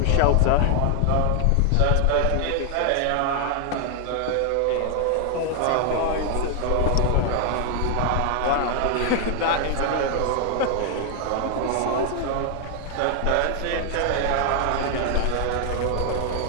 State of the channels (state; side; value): different; both; correlation 0.00